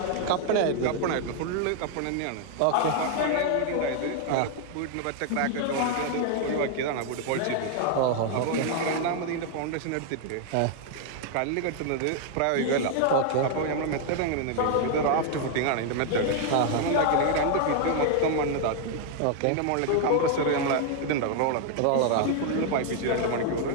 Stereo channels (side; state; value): both; different; correlation 0.00